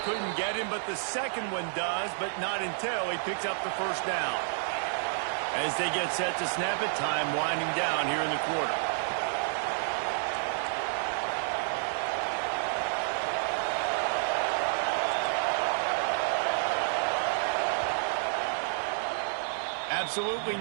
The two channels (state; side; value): silent; left; digital silence